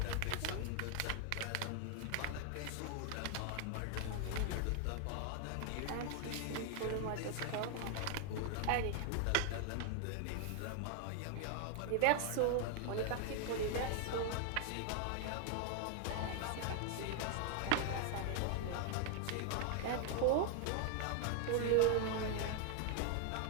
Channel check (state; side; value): different; both; correlation 0.00